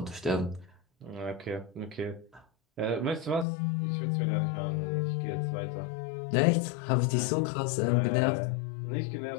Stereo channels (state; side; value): drops out; right; at 3.5 s